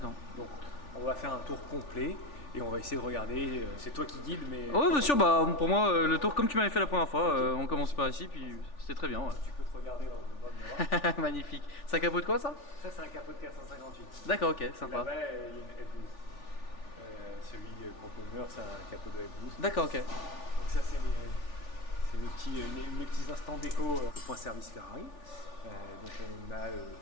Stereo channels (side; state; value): right; late; 3.4 ms